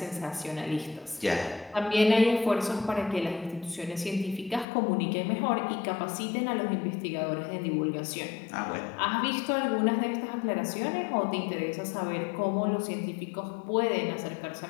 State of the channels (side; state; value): right; drops out; at 4.7 s